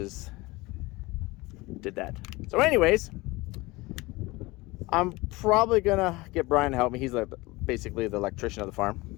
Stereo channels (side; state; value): right; quieter; 22.0 dB